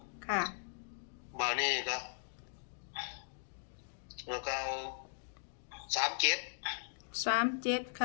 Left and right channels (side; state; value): right; silent; digital silence